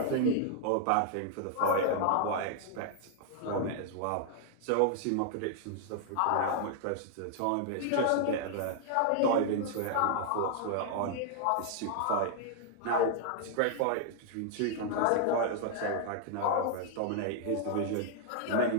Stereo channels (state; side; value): different; both; correlation 0.00